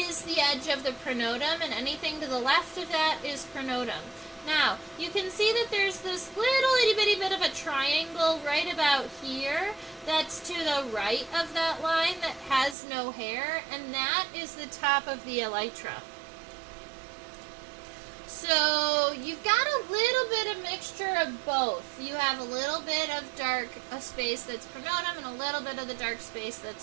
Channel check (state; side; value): drops out; left; at 12.8 s